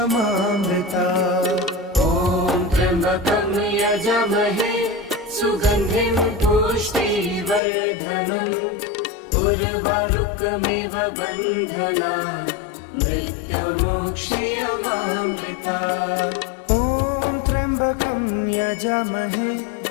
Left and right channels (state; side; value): drops out; right; at 7.6 s